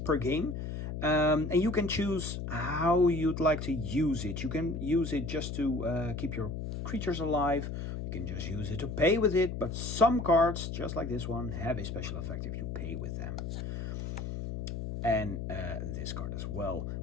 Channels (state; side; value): noise; left; hum, 5 dB below the sound